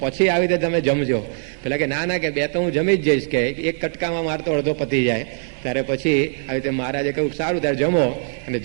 પછી આવી રીતે તમે જમજો. પેલા કે ના કે 2 તો હું જમી જ જઈશ, કે એક કટકામાં મારતો અડધો પતી જાય. ત્યારે પછી આવી રીતે મહારાજે કહ્યું સારું ત્યારે જમો. અને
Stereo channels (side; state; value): left; silent; digital silence